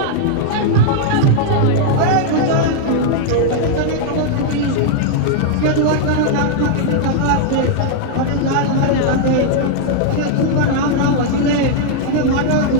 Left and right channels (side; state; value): both; different; correlation 0.00